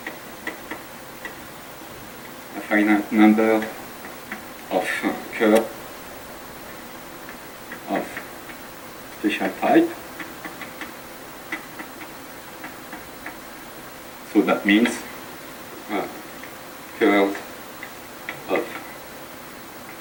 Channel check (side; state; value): both; identical; correlation 1.00